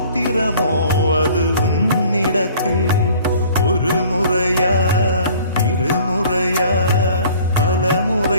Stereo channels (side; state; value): both; inverted; correlation -0.51